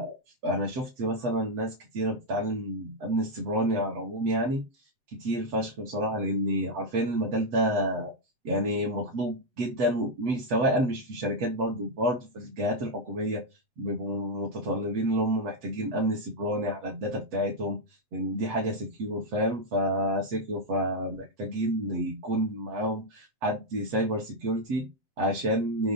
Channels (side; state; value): left; late; 7.9 ms